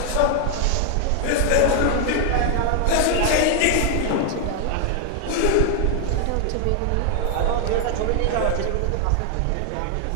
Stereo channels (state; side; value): different; both; correlation 0.00